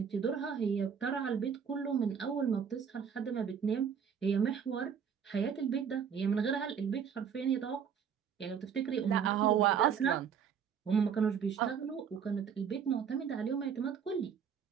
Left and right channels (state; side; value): quieter; left; 7.4 dB